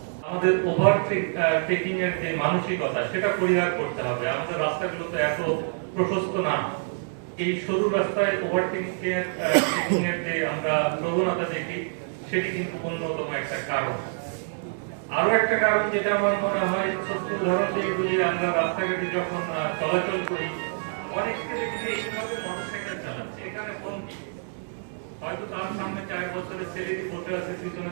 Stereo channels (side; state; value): left; silent; digital silence